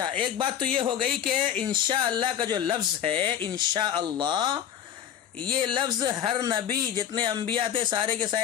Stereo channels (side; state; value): right; quieter; 9.7 dB